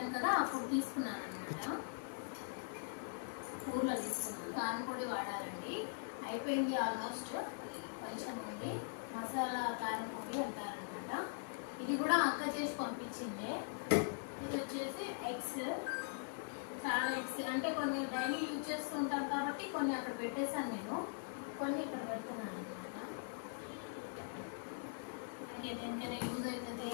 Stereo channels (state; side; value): silent; right; digital silence